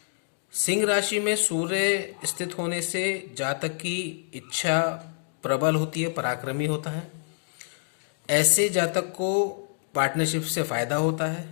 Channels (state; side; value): silent; right; digital silence